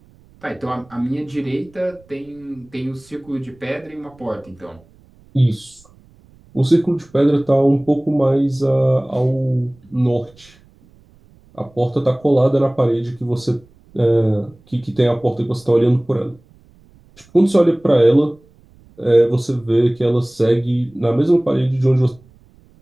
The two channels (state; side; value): noise; right; rumble, 29 dB below the sound